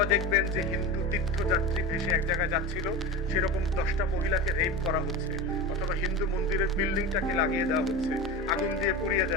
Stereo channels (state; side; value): normal; both; correlation 0.27